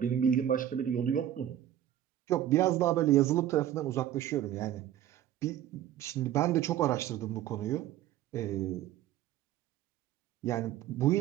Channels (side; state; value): left; quieter; 11.7 dB